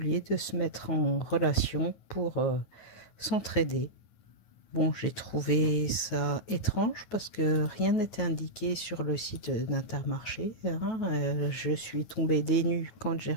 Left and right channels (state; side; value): late; right; 9.1 ms